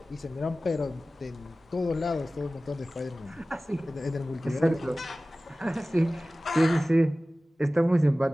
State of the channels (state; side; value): normal; both; correlation 0.97